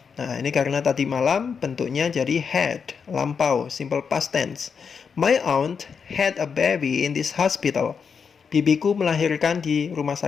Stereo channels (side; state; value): right; quieter; 6.1 dB